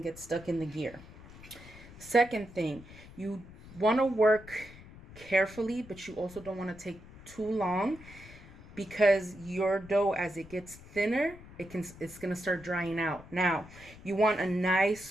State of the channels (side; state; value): left; noise; rumble, 19 dB below the sound